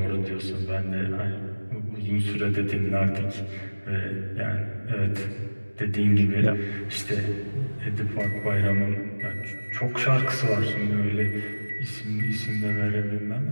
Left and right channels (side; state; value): both; inverted; correlation -1.00